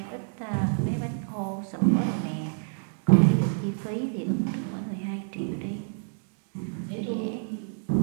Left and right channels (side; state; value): left; silent; digital silence